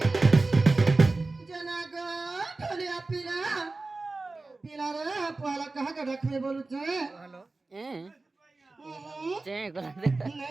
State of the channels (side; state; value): left; quieter; 3.4 dB